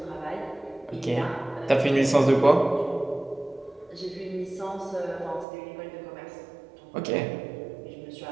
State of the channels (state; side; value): drops out; left; at 5.5 s